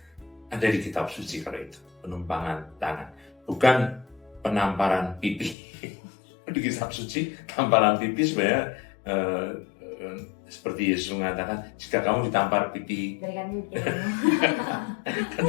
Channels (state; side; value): drops out; right; at 5.6 s